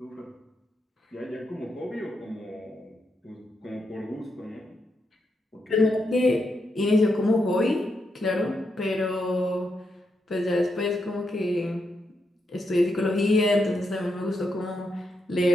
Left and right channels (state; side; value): normal; both; correlation 0.82